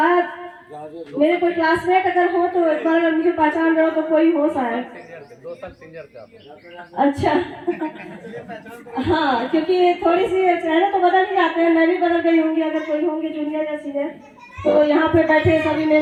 मेरे कोई क्लासमेट अगर हो तो एक बार अगर मुझे पहचान रहे हो तो कोई हो शायद। अच्छा हाँ, क्योंकि थोड़ी सी चेहरे तो बदल ही जाते हैं। मैं भी बदल गई होंगी अगर कोई होंगे जूनियर या सीनियर। तो यहाँ पे बैठे सभी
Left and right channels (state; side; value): identical; both; correlation 1.00